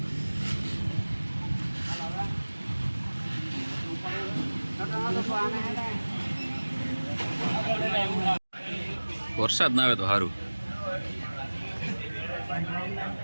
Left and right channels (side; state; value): both; inverted; correlation -1.00